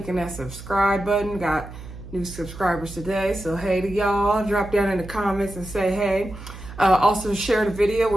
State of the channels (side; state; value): right; noise; hum, 14 dB below the sound